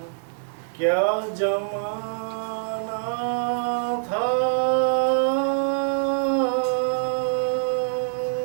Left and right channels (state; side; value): silent; left; digital silence